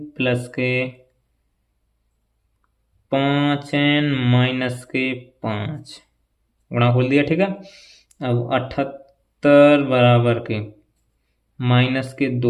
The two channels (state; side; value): identical; both; correlation 1.00